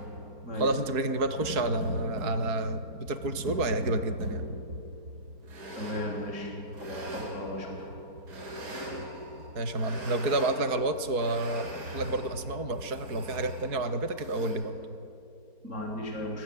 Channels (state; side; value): late; left; 4.4 ms